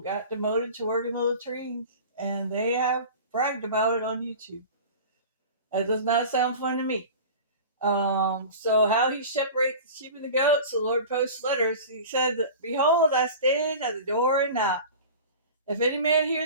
got demoted to working little trees, and they have bragged about it on YouTube. That does not sound fun to me. So how he separates the sheep and the goats, the Lord posts letters. He said, "Behold, I stand at the door and knock. If any man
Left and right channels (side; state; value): both; inverted; correlation -0.36